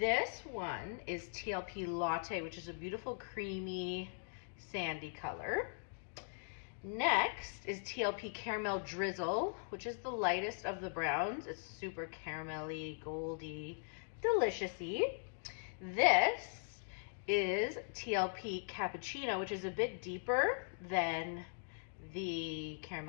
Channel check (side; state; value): right; silent; digital silence